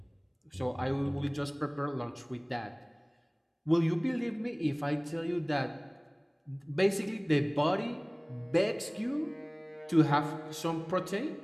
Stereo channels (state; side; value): identical; both; correlation 1.00